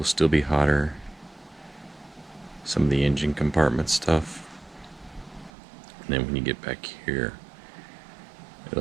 still be hotter. Some of the engine compartment stuff. And then when you get back here,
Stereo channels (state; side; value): drops out; left; at 5.5 s